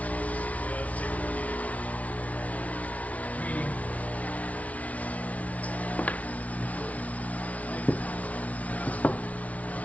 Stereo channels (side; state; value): right; late; 0.068 ms